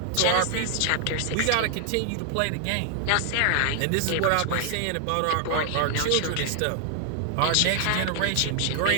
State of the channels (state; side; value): different; both; correlation 0.00